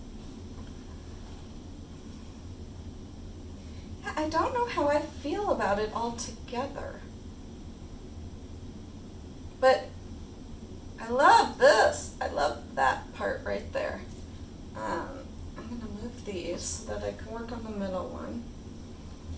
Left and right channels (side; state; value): both; identical; correlation 1.00